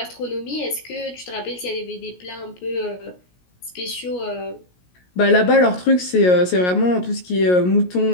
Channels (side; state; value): right; late; 17 ms